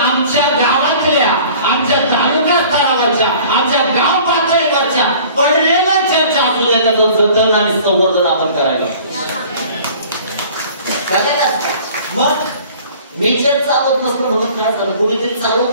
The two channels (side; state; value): both; inverted; correlation -0.48